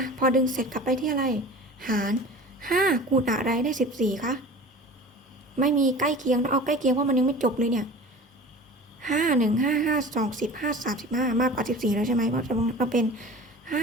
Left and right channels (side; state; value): both; normal; correlation 0.39